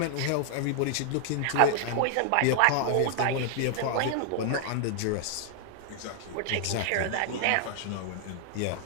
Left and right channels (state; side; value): different; both; correlation 0.00